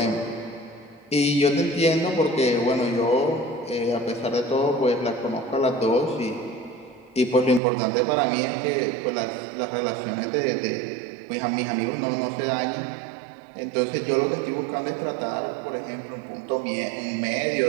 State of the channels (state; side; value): drops out; left; at 7.6 s